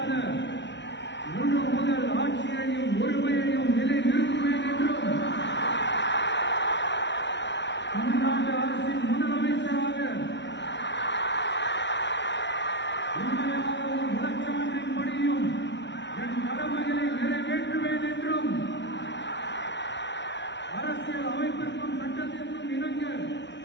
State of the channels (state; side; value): late; right; 0.51 ms